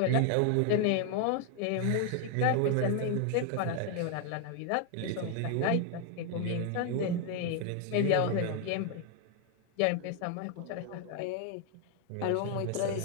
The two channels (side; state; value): both; different; correlation 0.00